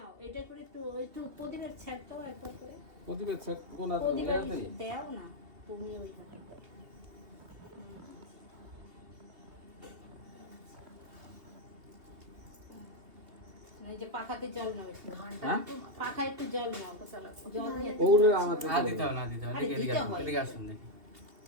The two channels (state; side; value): late; left; 2.7 ms